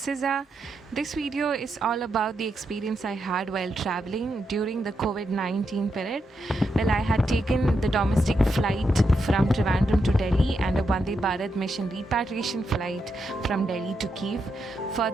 This video is all about the experience I had while traveling during the COVID-19 period. Well, I had taken the domestic flight from Trivandrum to Delhi and a Vande Bharat mission repatriation flight from Delhi to Kyiv.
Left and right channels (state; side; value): normal; both; correlation 0.83